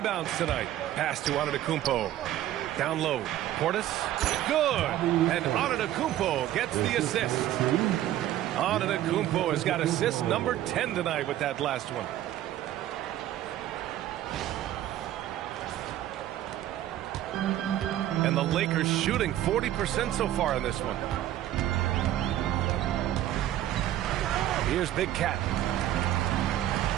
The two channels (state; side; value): quieter; left; 12.9 dB